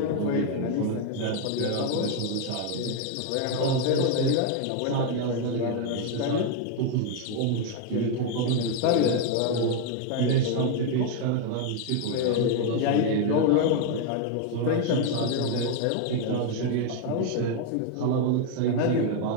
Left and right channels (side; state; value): both; different; correlation 0.01